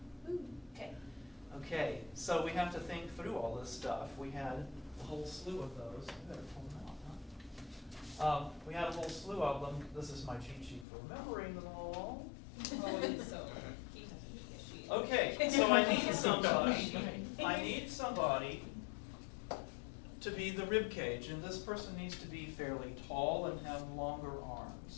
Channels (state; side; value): drops out; right; at 10.9 s